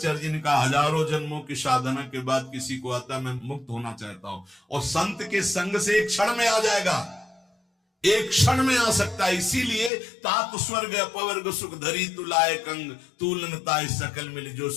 जी ने कहा, हजारों जन्मों की साधना के बाद किसी को आता मैं मुक्त होना चाहता हूं, और संत के संग से एक क्षण में आ जाएगा, एक क्षण में आ सकता है। इसीलिए तात स्वर्ग अपवर्ग सुख धरी तुलाए कंग, तुलनताय सकल मिल जो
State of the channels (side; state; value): right; drops out; at 9.9 s